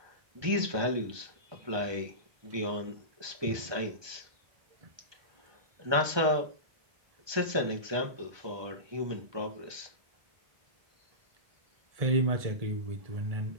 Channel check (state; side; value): late; left; 1.2 ms